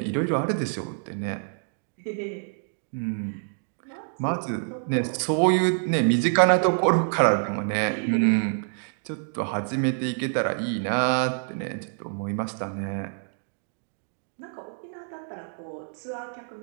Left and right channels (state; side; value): silent; left; digital silence